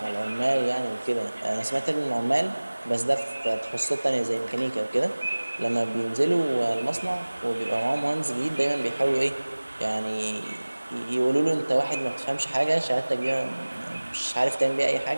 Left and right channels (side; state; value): both; inverted; correlation -1.00